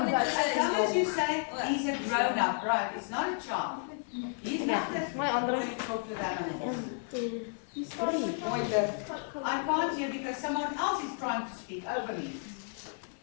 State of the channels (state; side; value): silent; right; 56 dB below the other